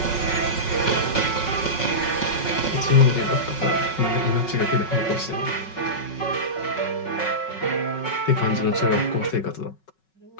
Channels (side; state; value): right; late; 5.4 ms